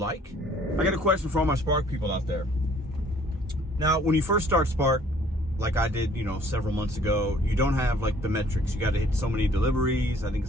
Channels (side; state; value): both; normal; correlation 0.57